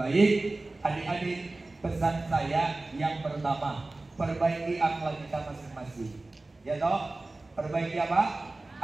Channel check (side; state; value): left; quieter; 3.1 dB